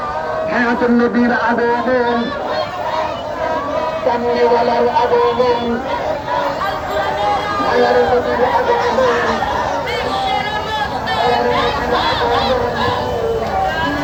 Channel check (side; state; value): both; identical; correlation 1.00